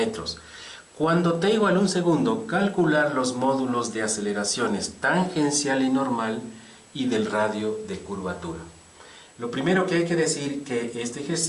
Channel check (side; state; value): both; identical; correlation 1.00